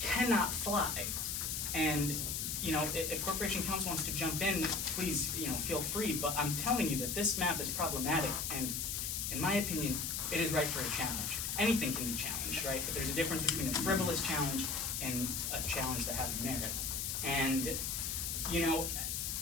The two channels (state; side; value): noise; left; hiss, 1 dB below the sound